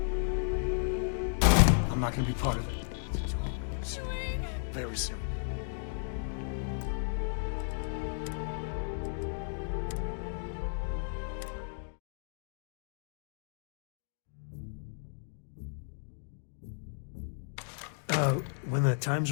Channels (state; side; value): silent; right; digital silence